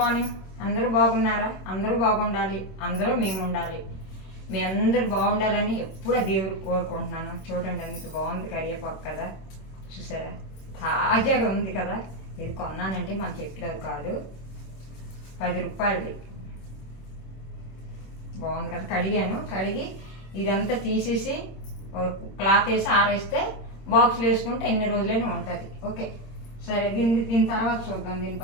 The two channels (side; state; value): right; late; 26 ms